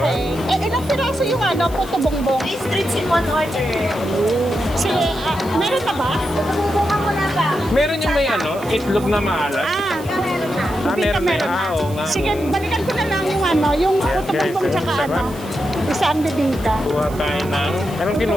okay. Ilang piraso yung puto bongbong? 3 strips in one order. Sige, meron na ba? Bubungan mo na ba? Meron yung may ano, itlog na maalat. Meron na. Meron na. na. Oo nga. Sige, balikan ko na lang yung yung puto guys, bongbong tsaka sarap. isang bibingka. Kuha tayo ng... Anong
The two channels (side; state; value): right; noise; hiss, 19 dB below the sound